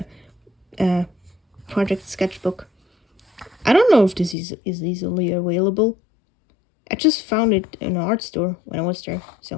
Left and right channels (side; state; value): right; drops out; at 4.4 s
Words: project sketchbook. I don't know if this is easily available. I just found it in an art store when I was there.